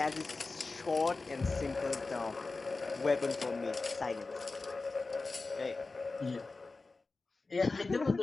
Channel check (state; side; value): quieter; right; 3.7 dB